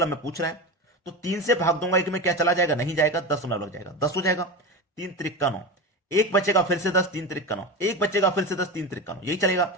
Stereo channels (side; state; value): both; normal; correlation 0.23